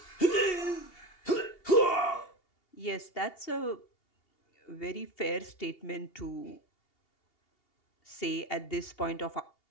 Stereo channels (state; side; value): late; right; 2.8 ms